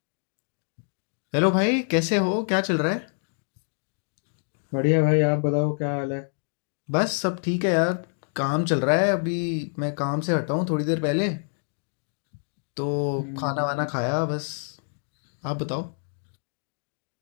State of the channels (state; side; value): silent; right; 60 dB below the other